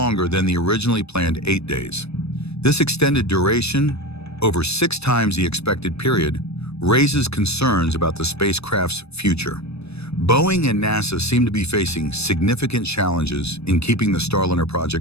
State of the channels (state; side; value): late; right; 0.79 ms